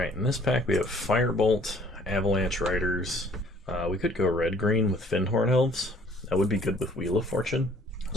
in this pack we have Firebolt, Avalanche Riders. We could go red-green with Fyndhorn Elves. That would be good with Wheel of Fortune.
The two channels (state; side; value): normal; both; correlation 0.58